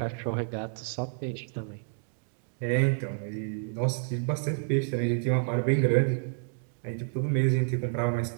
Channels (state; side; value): silent; left; digital silence